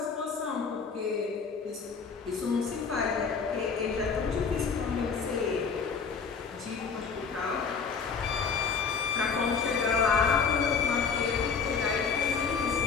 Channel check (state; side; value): quieter; right; 5.6 dB